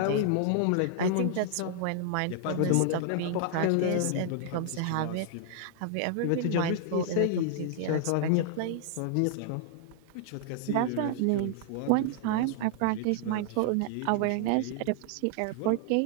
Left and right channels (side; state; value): both; different; correlation 0.00